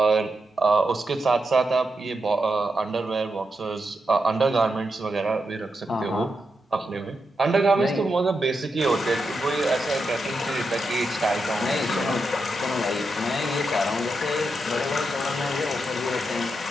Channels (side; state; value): both; normal; correlation 0.86